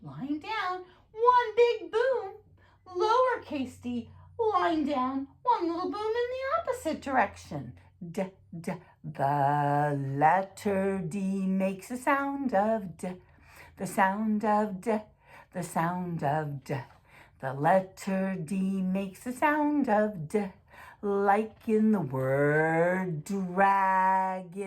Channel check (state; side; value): identical; both; correlation 1.00